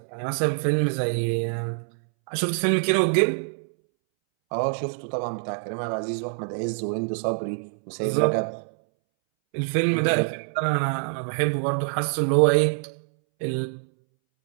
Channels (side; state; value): left; silent; 62 dB below the other